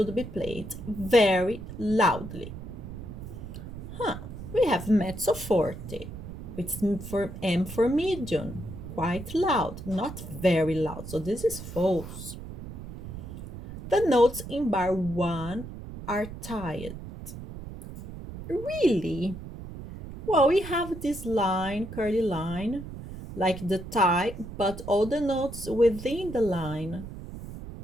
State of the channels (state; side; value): noise; right; rumble, 11 dB below the sound